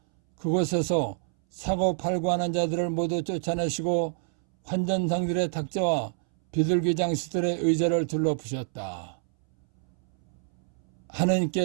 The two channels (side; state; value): left; silent; 60 dB below the other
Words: 그곳에서 사고 팔고 하는 자들을 모두 쫓아내시고 환전상들의 탁자와 비둘기 장수들의 의자를 둘러부셨다.